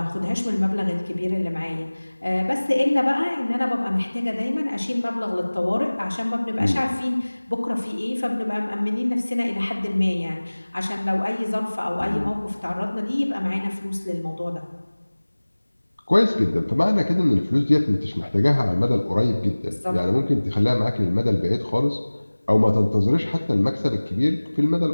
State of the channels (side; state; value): both; inverted; correlation -1.00